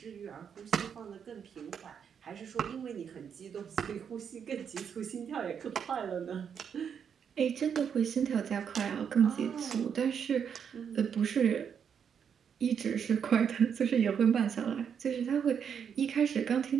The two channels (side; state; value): left; quieter; 7.5 dB